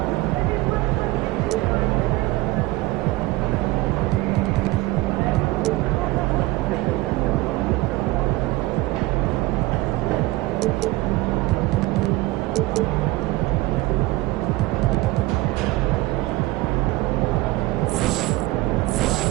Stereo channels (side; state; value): left; quieter; 19.5 dB